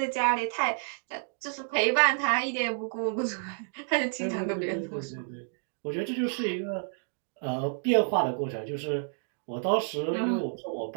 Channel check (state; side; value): silent; left; digital silence